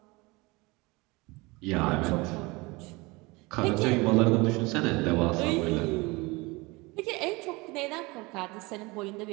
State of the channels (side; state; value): left; quieter; 24.3 dB